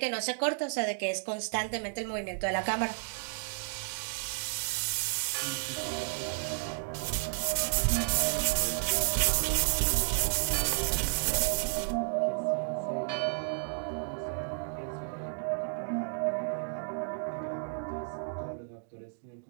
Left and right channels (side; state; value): left; silent; digital silence